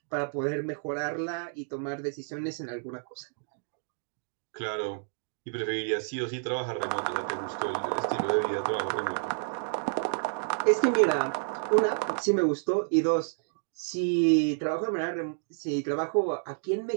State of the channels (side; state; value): left; silent; digital silence